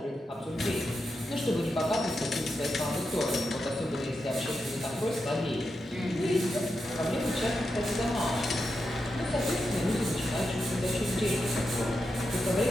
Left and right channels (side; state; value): both; normal; correlation 0.87